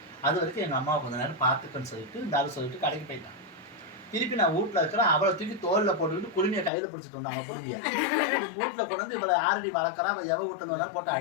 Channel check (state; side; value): drops out; right; at 6.7 s